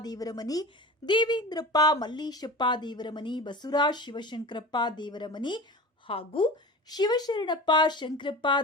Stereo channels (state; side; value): normal; both; correlation 0.34